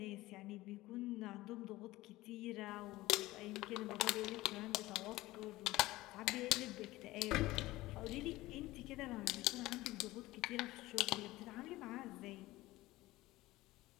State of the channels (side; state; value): right; quieter; 18.2 dB